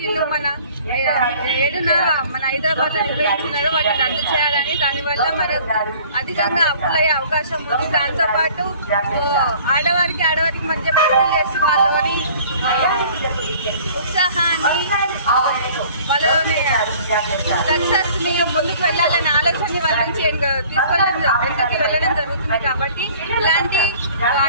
మన 7న మన హైదరాబాద్లో నిర్వహించినారో వాటిని రద్దు చేయాలని, దానివల్ల మన అధికంగా అప్పులయ్యే అవకాశం ఉంది. దాంతోపాటు ఆడవారికి మధ్య పోటీలు చేసి వాళ్ళని ఉత్సాహాన్ని వాళ్ళని సక్సెస్ ని ముందుకు వెళ్ళాలనే ఆలోచన వాళ్ళ నుంచి వెనకకి వెళ్ళడం జరుగుతుంది. కాబట్టి ఇలాంటి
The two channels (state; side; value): inverted; both; correlation -0.51